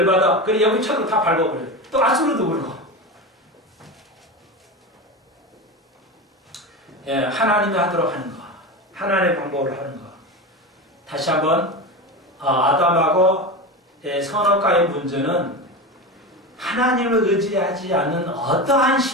그래 여기 쳐도 다 밟아버려요. 또 아수르도 그러고. 예, 하나님이 하도록 하는 거. 하나님의 방법을 하는 거. 다시 한번 아담하고 선악과의 문제는 하나님을 의지하지 않는 어떠한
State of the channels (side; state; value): both; normal; correlation 0.23